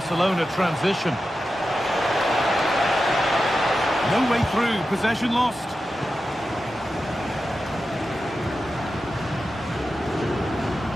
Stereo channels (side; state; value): both; normal; correlation 0.91